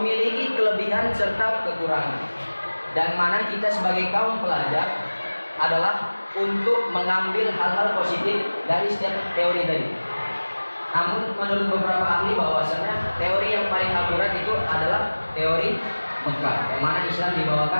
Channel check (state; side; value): inverted; both; correlation -1.00